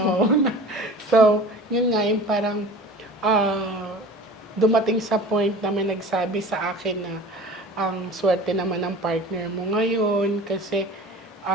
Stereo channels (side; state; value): both; normal; correlation 0.40